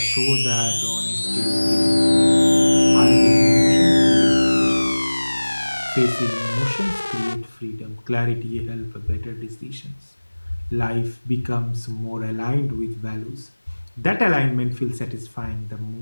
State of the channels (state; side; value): inverted; both; correlation -1.00